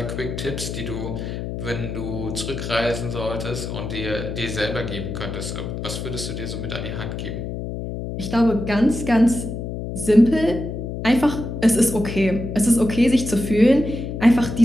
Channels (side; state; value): left; noise; hum, 6 dB below the sound